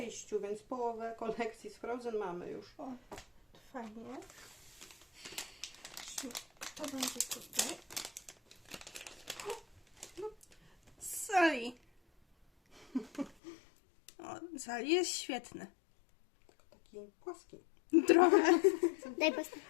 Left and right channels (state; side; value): drops out; right; at 13.4 s